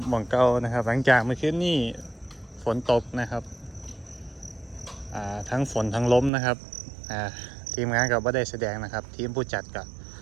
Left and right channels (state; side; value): drops out; left; at 6.3 s